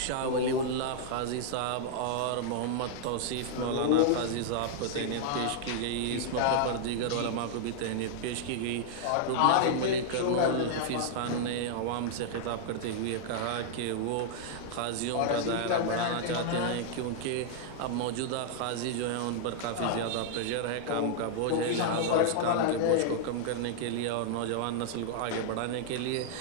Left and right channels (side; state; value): both; different; correlation -0.01